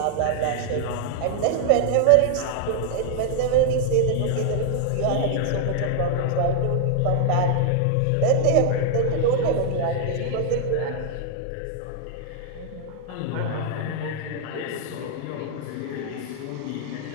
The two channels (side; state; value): both; different; correlation 0.00